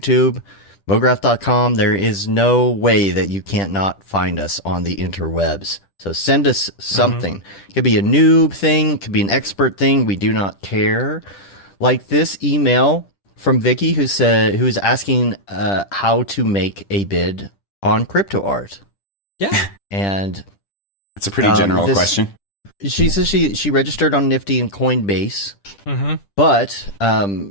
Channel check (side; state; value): right; late; 10 ms